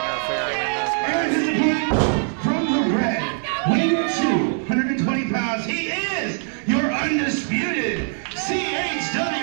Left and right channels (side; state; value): left; silent; 57 dB below the other